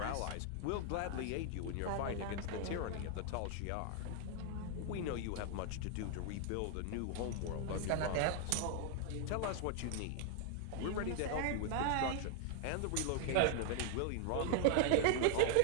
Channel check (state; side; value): different; both; correlation 0.00